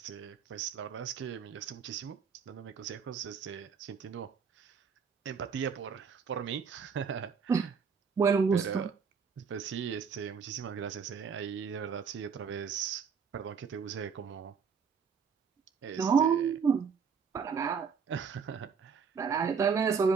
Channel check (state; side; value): quieter; left; 6.1 dB